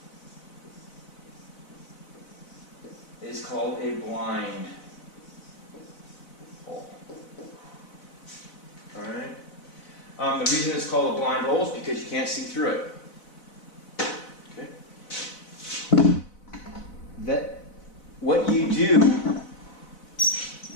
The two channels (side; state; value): right; late; 4.0 ms